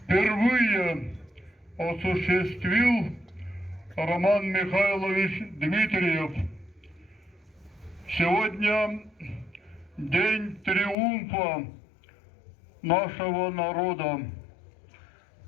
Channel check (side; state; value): right; drops out; at 11.0 s